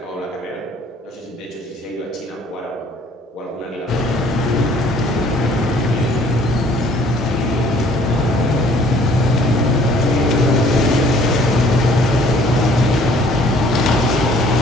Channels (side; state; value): both; normal; correlation 0.57